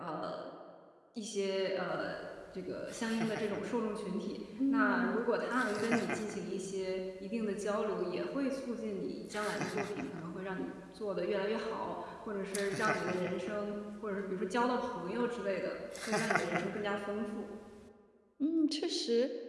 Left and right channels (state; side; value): identical; both; correlation 1.00